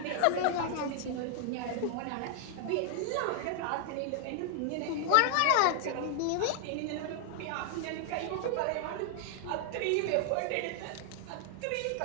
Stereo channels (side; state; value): both; different; correlation 0.00